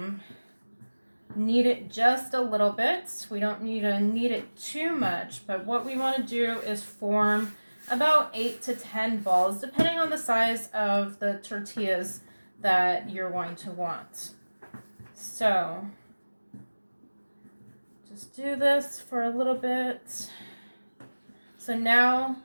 knead it just a little bit. We don't need to knead it too much, but what we want to do is form about 8 to 10 balls, depending on the size of the tortillas that you're going to want. So just do this for a little bit. So now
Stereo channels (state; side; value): inverted; both; correlation -1.00